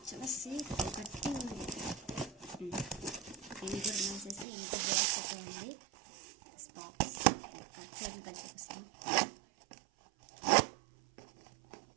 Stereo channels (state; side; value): drops out; left; at 4.5 s